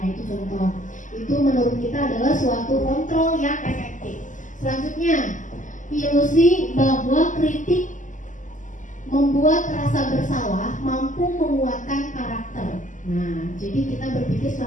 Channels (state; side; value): late; right; 0.37 ms